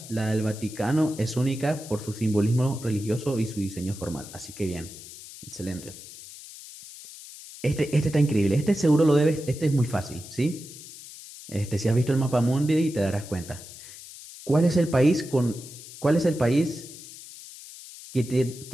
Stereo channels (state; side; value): noise; left; hiss, 15 dB below the sound